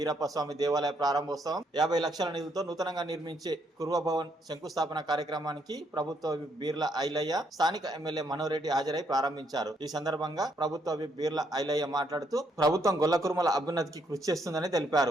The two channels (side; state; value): both; normal; correlation 0.73